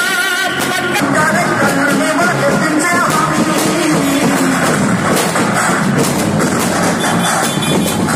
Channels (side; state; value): both; identical; correlation 1.00